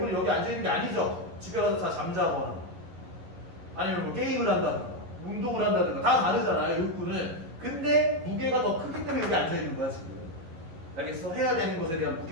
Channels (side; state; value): left; late; 11 ms